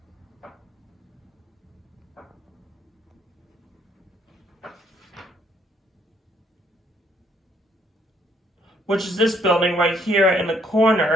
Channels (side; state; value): both; normal; correlation 0.67